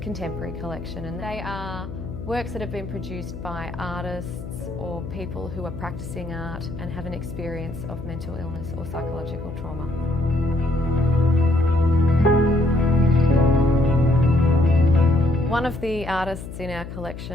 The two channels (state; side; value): noise; left; hum, 10 dB below the sound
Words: collection, and they are works that have been produced by artists or people who are practising art and have an experience of mental illness or psychological trauma. One of the artists in our